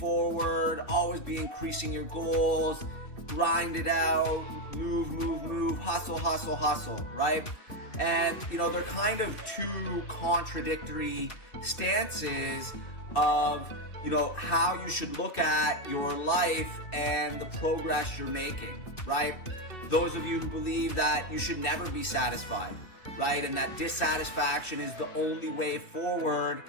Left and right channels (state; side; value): late; right; 2.6 ms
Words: always be increasing your goals, grind it out, move, hustle, right? And, you know, they're kind of two contradictory stances of, you know, how you should look at your life and the progress you're making, right? Those of you who believe that you should never be satisfied, right? And that dissatisfaction is the only way forward